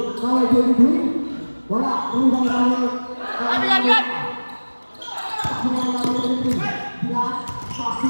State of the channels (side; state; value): both; inverted; correlation -1.00